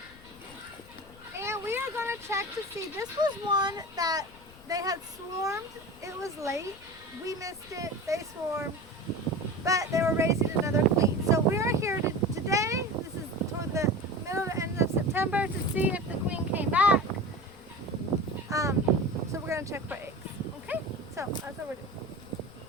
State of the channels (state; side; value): noise; left; rumble, 22 dB below the sound